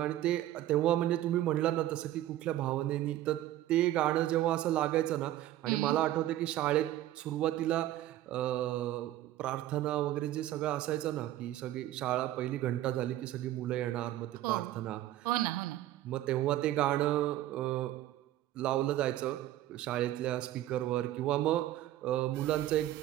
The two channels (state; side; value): quieter; left; 13.9 dB